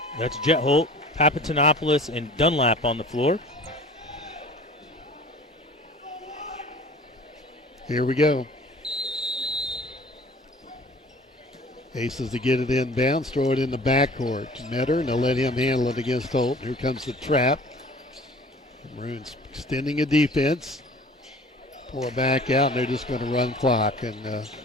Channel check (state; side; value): normal; both; correlation 0.46